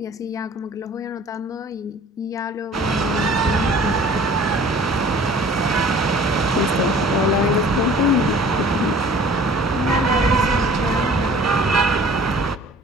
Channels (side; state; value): both; normal; correlation 0.48